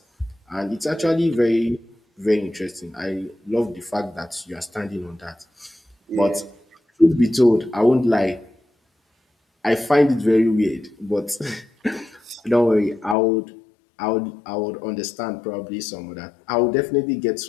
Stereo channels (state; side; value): drops out; right; at 13.2 s